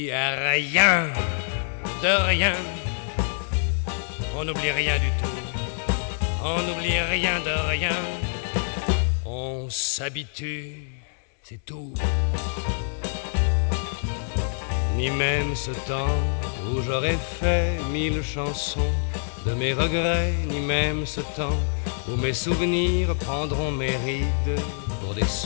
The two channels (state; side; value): silent; right; digital silence